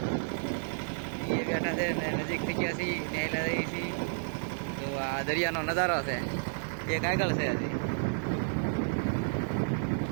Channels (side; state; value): left; silent; 57 dB below the other